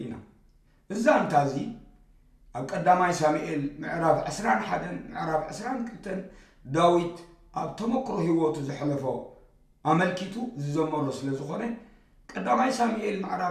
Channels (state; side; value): identical; both; correlation 1.00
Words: እዛ እንታዚ ኣብ ቀዳማይ ሳሙኤል ምዕራፍ 21 ምዕራፍ 22 ዳዊት ኣብ ተመክሮ ህይወቱ ዝሕለፎ ኣመልኪቱ ዝዘመሮ ስለ ዝኾነ ቀዳማይ ሳሙኤል